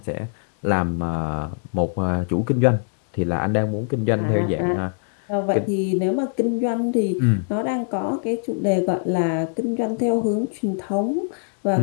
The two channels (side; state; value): right; silent; digital silence